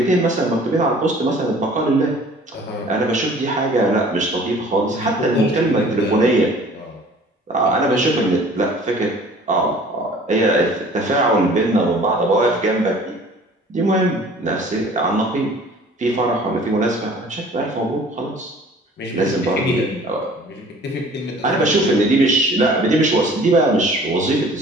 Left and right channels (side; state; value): both; normal; correlation 0.49